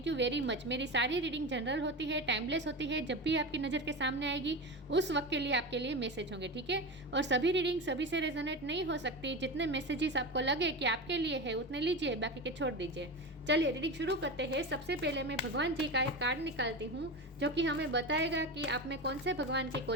यू वेरी मच। मेरी सारी रीडिंग जनरल होती है, टाइमलेस होती है। जब भी आपकी नज़र के सामने आएगी उस वक्त के लिए आपके लिए मैसेज होंगे, ठीक है। और सभी रीडिंग सभी से रेजोनेट नहीं हो सकती। जितने मैसेजेस आपको लगे कि आपके लिए है उतने लीजिए, बाकी के छोड़ दीजिए। चलिए रीडिंग शुरू करते हैं। सबसे पहले मैं भगवान जी का एक कार्ड निकालती हूँ जो कि हमें बताएगा कि आप में कौन से भगवान की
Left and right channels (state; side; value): normal; both; correlation 0.23